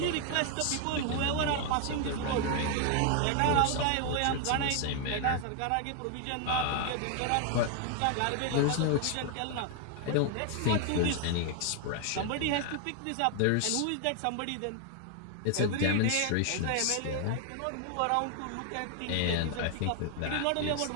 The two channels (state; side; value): different; both; correlation 0.00